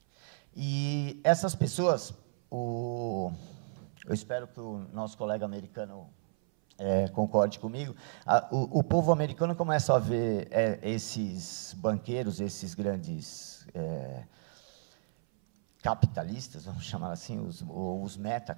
E essas pessoas, eu espero que o nosso colega americano concorde comigo, o povo americano começa a ver esses banqueiros, esses grandes capitalistas, vamos chamar assim, os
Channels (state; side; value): silent; left; 56 dB below the other